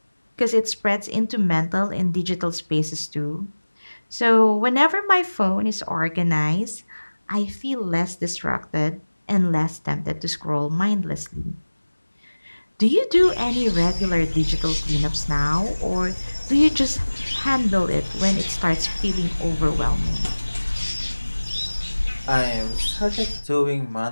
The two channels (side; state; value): both; inverted; correlation -1.00